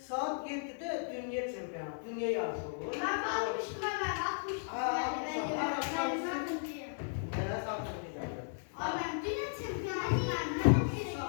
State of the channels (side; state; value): right; silent; digital silence